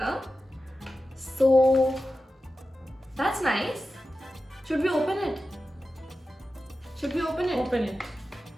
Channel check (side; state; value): both; normal; correlation 0.93